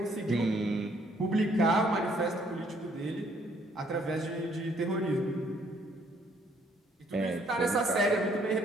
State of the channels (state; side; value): normal; both; correlation 0.65